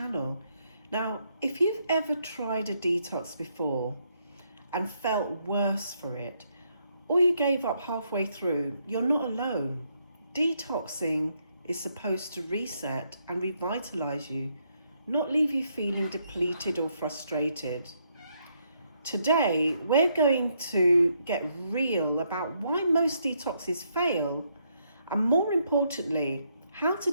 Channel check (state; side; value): inverted; both; correlation -0.75